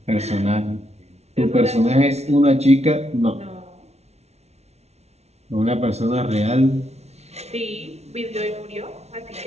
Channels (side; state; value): left; late; 0.31 ms